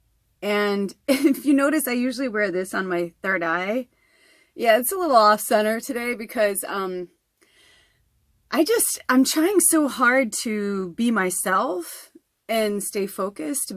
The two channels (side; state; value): both; identical; correlation 1.00